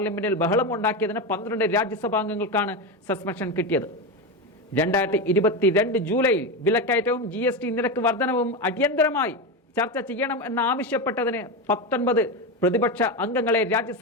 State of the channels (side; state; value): both; normal; correlation 0.16